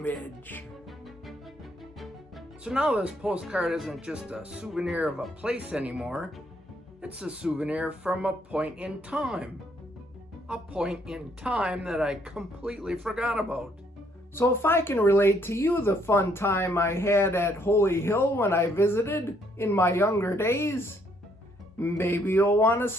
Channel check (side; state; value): both; normal; correlation 0.69